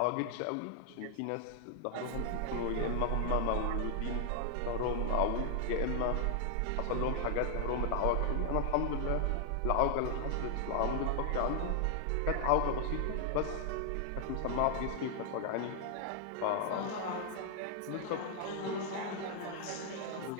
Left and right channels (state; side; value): different; both; correlation 0.00